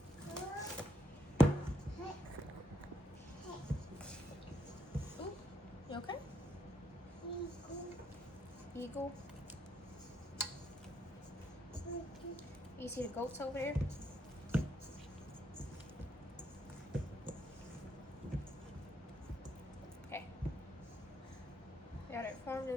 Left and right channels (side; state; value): both; normal; correlation 0.76